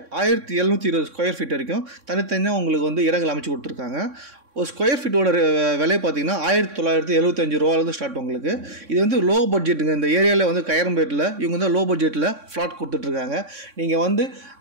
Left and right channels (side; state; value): left; late; 3.6 ms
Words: 1720 ஸ்கொயர் ஃபீட் வரைக்கும் தனித்தனியாக உங்களுக்கு வந்து இடங்கள் அமைச்சு கொடுத்துருக்காங்க. ஒரு ஸ்கொயர் ஃபீட்டோட விலை பார்த்தீங்கன்னா 1975 ரூபாலேருந்து ஸ்டார்ட். உங்களுக்கு இது வந்து லோ பட்ஜெட்டுங்க. இந்த ஏரியாவில் வந்து கையரம்பேட்டில் இவங்க வந்து லோ பட்ஜெட்டில் ஃப்ளாட் கொடுத்துட்ருக்காங்க. நீங்கள் வந்து